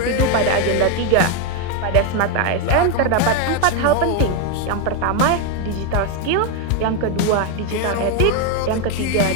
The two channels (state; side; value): different; both; correlation 0.01